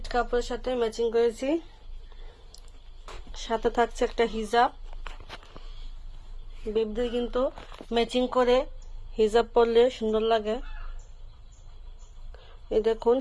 কাপড়ের সাথে ম্যাচিং করেছি। সাথে থাকছে একটা হিজাব। বেবিদের কিন্তু ম্যাচিং করে হিজাব পরলে সুন্দর লাগে। এই দেখুন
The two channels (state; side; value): identical; both; correlation 1.00